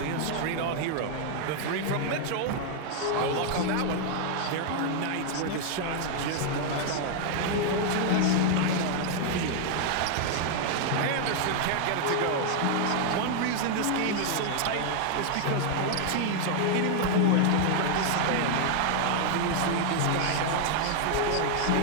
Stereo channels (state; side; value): different; both; correlation 0.00